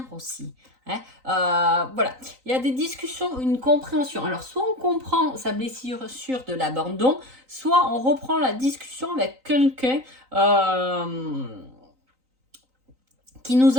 aussi. Hein. Voilà, il y a des discussions, une compréhension. Alors, soit on comprend sa blessure de l'abandon, soit on reprend la discussion avec quelqu'un qui nous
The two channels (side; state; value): left; late; 3.9 ms